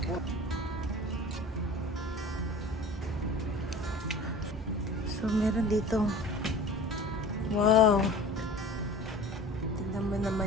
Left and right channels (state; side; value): normal; both; correlation 0.41